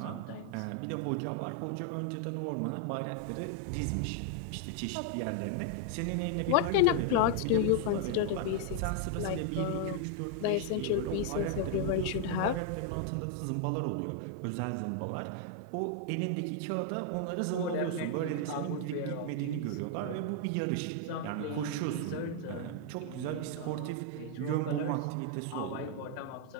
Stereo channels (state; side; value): different; both; correlation 0.00